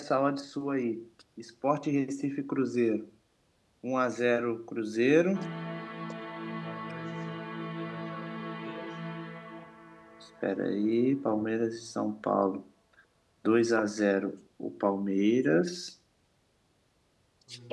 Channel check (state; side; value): identical; both; correlation 1.00